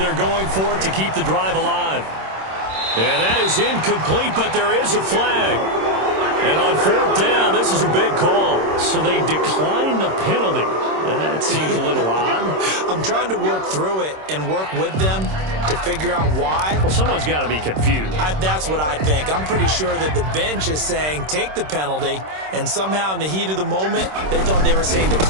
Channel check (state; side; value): late; left; 26 ms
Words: going for it to keep the drive alive. And that is incomplete, but there is a flag. And on 4th down, this is a big call. So they decline the penalty. That seems a little odd. I'm trying to work through it and work with them to figure out why. Well, someone's got to be confused. That's what I think. I'm pretty sure that the bench is saying take the penalty, and somehow in the heat of the moment, they thought they were saying